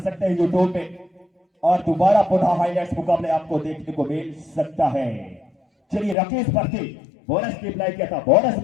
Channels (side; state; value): right; drops out; at 6.2 s